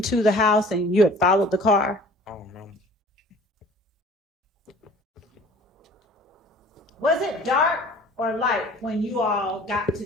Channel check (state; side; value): normal; both; correlation 0.48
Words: the house and you had followed the car? I don't know. Was it dark or light when you all got to